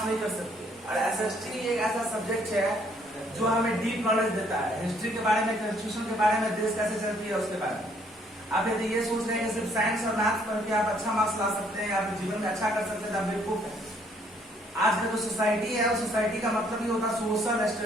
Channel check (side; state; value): both; normal; correlation 0.65